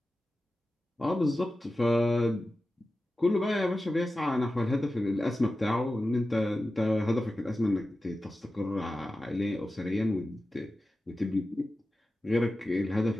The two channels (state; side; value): normal; both; correlation 0.94